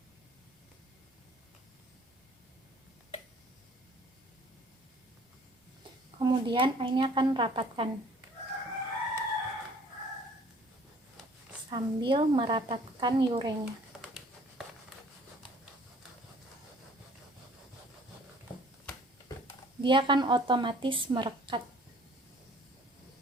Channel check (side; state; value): both; normal; correlation 0.54